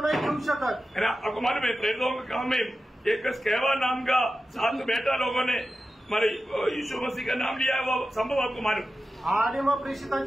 नाही घेऊ शकत। है ना। आपको मालूम है प्रेरितों के काम में एक स्केवा नाम का 7 बेटा लोगों ने हमारे यीशु मसीह का नाम लिया है, वो संभव आपको मालूम? आणि मग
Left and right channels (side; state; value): both; normal; correlation 0.92